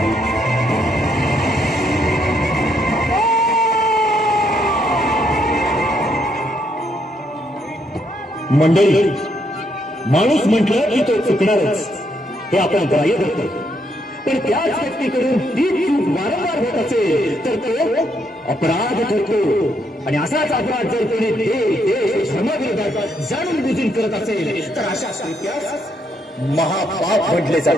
मंडळी, माणूस म्हटलं की तो चुकणारच हे आपण ग्राह्य धरतो, पण त्याच व्यक्तीकडून ती चूक वारंवार होत असेल तर तो अपराध ठरतो. आणि असाच अपराध जर कोणी देश धर्माविरोधात जाणून बुजून करत असेल तर अशा कृत्यास महापाप म्हटले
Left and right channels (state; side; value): normal; both; correlation 0.74